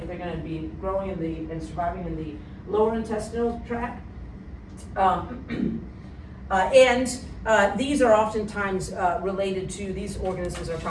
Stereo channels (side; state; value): both; identical; correlation 1.00